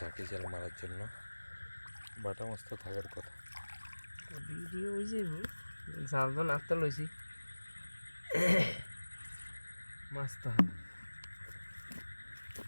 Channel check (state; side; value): inverted; both; correlation -1.00